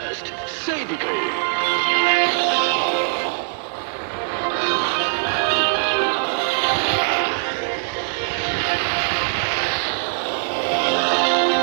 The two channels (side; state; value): left; silent; digital silence